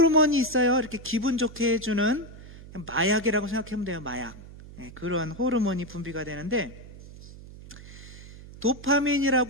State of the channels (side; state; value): right; noise; hum, 17 dB below the sound